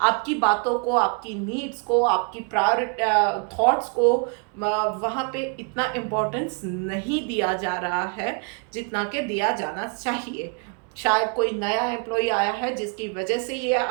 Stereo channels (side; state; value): left; quieter; 38.3 dB